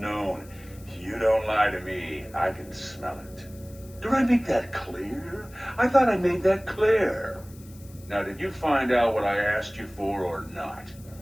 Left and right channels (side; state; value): left; noise; hiss, 23 dB below the sound